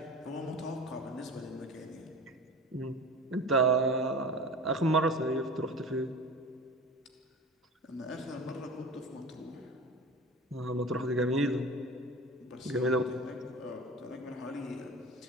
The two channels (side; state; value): both; normal; correlation 0.35